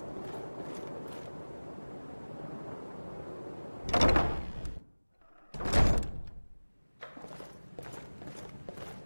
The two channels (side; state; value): both; inverted; correlation -1.00